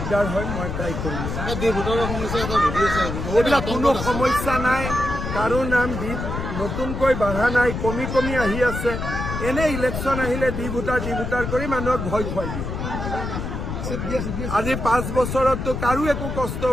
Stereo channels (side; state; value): left; noise; rumble, 4 dB below the sound